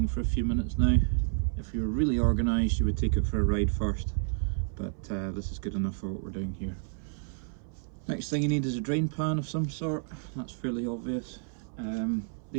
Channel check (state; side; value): silent; left; 58 dB below the other